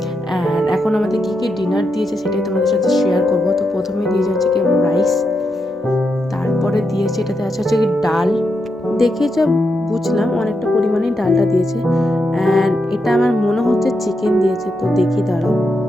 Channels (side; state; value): both; normal; correlation 0.84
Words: অ্যান্ড এখন আমাদের কী কী ডিনার দিয়েছে সেটাই তোমাদের সাথে শেয়ার করবো। তো প্রথমে দিয়েছে হচ্ছে কি রাইস, তারপরে দিয়েছে এটাতে আছে হচ্ছে কি ডাল। দেখে যা বুঝলাম অনেকটা পরিমাণেই ডালটা দিয়েছে। অ্যান্ড এটা আমার মনে হচ্ছে চিকেন দিয়েছে, তো দেখি দাঁড়াও।